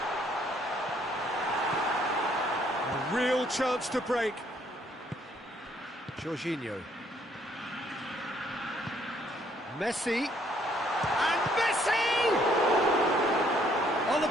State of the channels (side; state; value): both; normal; correlation 0.66